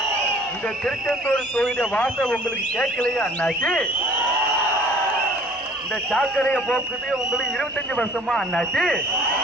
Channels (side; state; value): both; normal; correlation 0.51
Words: இந்த திருச்செந்தூர் தொகுதி வாசம் உங்களுக்கு கேட்கலையா அண்ணாச்சி? இந்த சாக்கடையை போக்குது உங்களுக்கு 25 வருஷமா அண்ணாச்சி?